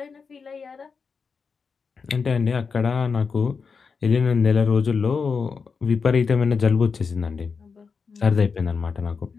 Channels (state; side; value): quieter; right; 5.4 dB